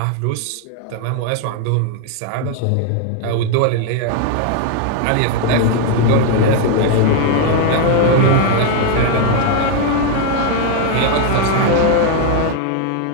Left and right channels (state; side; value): different; both; correlation 0.01